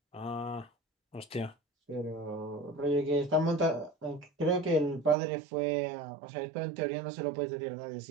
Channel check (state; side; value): drops out; left; at 5.2 s